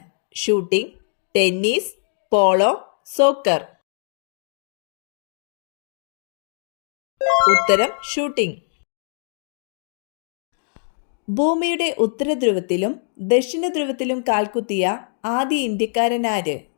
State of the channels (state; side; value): silent; right; digital silence